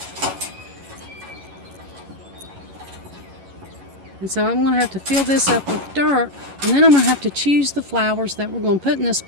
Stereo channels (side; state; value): left; late; 11 ms